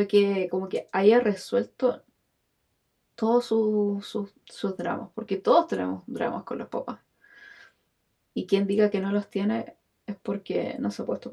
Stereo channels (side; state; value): both; identical; correlation 1.00